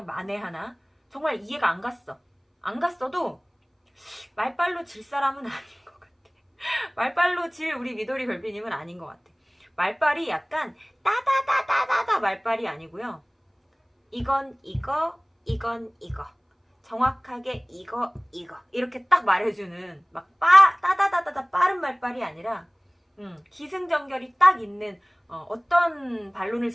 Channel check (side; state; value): both; identical; correlation 1.00